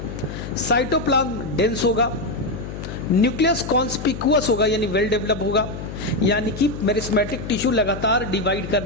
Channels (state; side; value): noise; left; hum, 9 dB below the sound